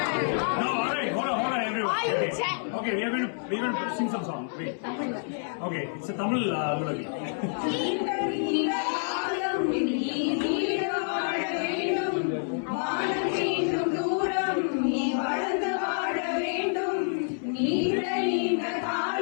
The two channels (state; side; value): silent; right; 59 dB below the other